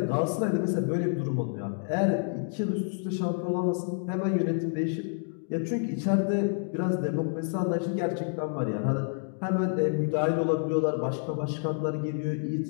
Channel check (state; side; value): silent; right; digital silence